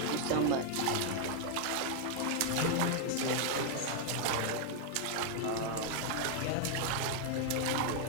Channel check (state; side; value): different; both; correlation 0.00